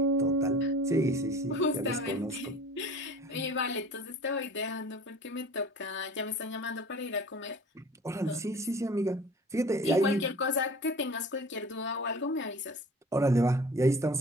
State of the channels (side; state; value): both; normal; correlation 0.43